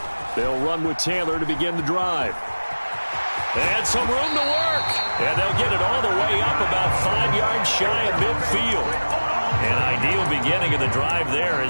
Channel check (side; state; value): both; inverted; correlation -1.00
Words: They'll run with Taylor to begin the drive. And some room to work. And they'll get it all the way up about 5 yards shy of midfield. An ideal beginning of the drive there